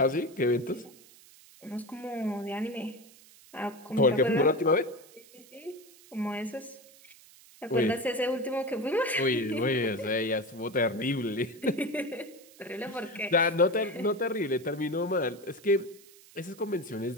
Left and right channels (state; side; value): noise; right; hiss, 23 dB below the sound